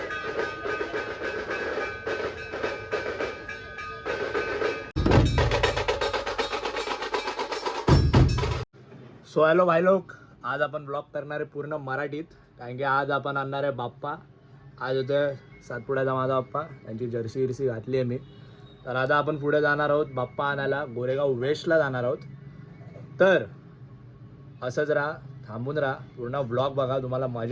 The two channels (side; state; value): both; identical; correlation 1.00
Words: सो हॅलो भाई लोक, आज आपण ब्लॉग करणार आहे पूर्ण मराठीत. कारण की आज आपण आणणार आहे बाप्पा. आज होतं सातपुड्याचा माझा बाप्पा, त्यांची जर्सी विरसी घातली आहे मी. तर आता आपण पुढे जाणार आहोत बाप्पा आणायला, गोरेगाव वेस्टला जाणार आहोत. तर असंच राहा, थांबून राहा, पूर्ण ब्लॉग बघा, तुम्हाला